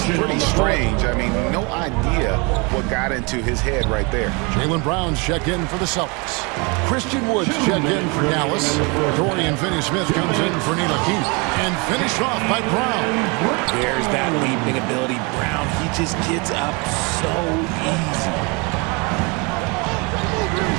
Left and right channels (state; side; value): quieter; left; 30.0 dB